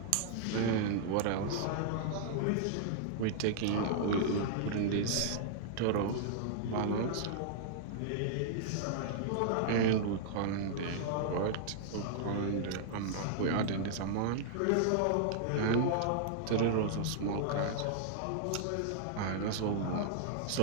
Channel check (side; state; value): both; different; correlation -0.01